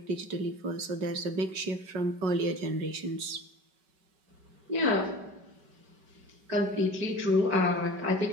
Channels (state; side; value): late; left; 5.2 ms